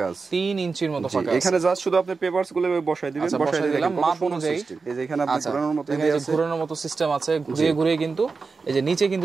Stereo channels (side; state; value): left; quieter; 4.5 dB